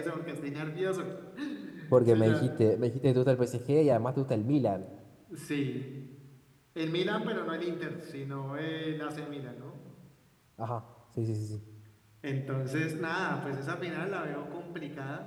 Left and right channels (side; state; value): both; identical; correlation 1.00